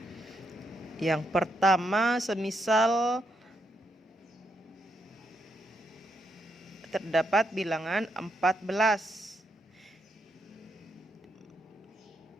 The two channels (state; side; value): normal; both; correlation 0.79